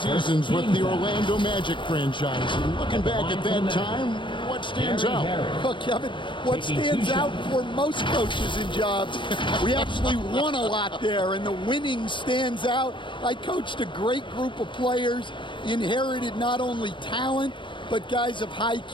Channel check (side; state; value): right; late; 0.23 ms